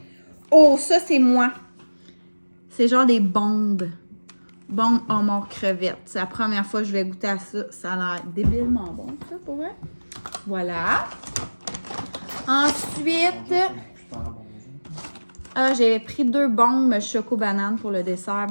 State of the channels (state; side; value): inverted; both; correlation -1.00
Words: Oh, ça, c'est moi. C'est genre des bombes. Bombes homard crevettes. C'est la première fois que je vais goûter à ça. Ça a l'air débilement bon, ça, pour vrai. Voilà. Ensuite... j'ai pris 2 bombes choco-banane pour le dessert